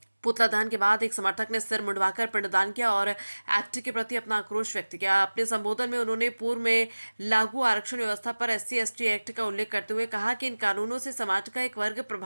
पुतला दहन के बाद एक समर्थक ने सिर मुंडवाकर पिंडदान किया और एक्ट के प्रति अपना आक्रोश व्यक्त किया। अपने संबोधन में उन्होंने पूर्व में लागू आरक्षण व्यवस्था पर SC/ST एक्ट का उल्लेख करते हुए कहा कि इन कानूनों से समाज का एक वर्ग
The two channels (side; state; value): both; inverted; correlation -1.00